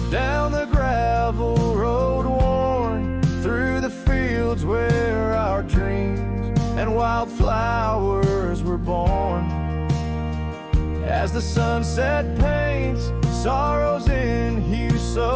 down the gravel road worn, through the fields where our dreams and wildflowers were born. As the sunset paints sorrows in hue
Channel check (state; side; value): identical; both; correlation 1.00